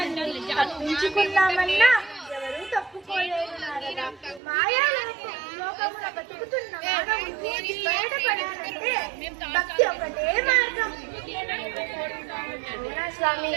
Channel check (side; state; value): left; drops out; at 4.4 s